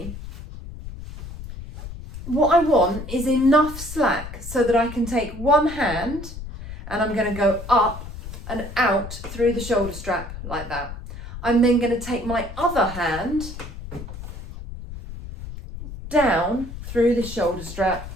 What I want is enough slack so that I can take one hand and I'm going to go up and out through the shoulder strap like that. I'm then going to take my other hand down through the shoulder strap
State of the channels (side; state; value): left; noise; rumble, 11 dB below the sound